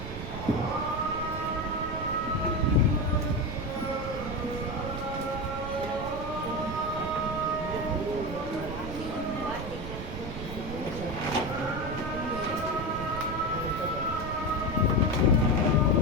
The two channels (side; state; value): right; noise; rumble, 7 dB below the sound